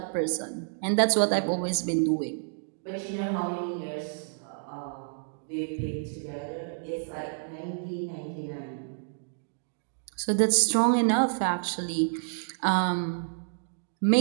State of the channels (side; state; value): left; silent; digital silence